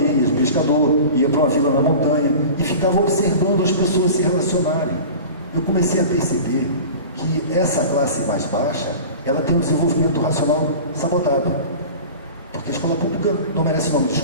pescador, ia para uma vila na montanha e ficava observando as pessoas se relacionarem. Eu comecei a perceber que essa classe mais baixa, ela tem um desenvolvimento racional sabotado. Porque a escola pública não merece o nome de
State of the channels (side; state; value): both; inverted; correlation -0.36